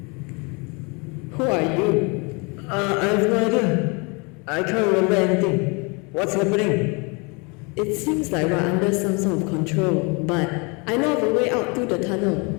Who are you? I have no idea. I can't remember anything. What's happening? It seems like we're under some sort of control, but I know of a way out through the tunnel.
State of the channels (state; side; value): quieter; right; 30.7 dB